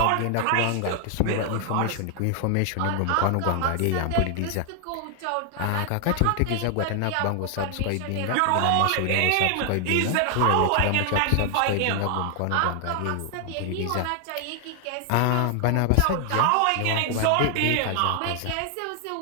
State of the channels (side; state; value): both; different; correlation 0.00